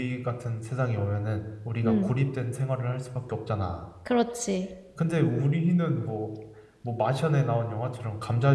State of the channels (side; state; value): both; identical; correlation 1.00